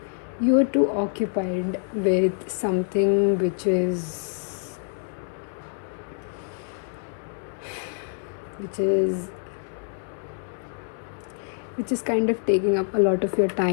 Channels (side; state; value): right; silent; 61 dB below the other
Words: you are too occupied with something which is kind of taking up a lot of your